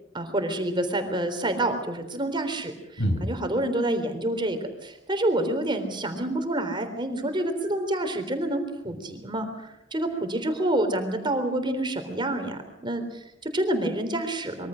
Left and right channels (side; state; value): both; normal; correlation 0.50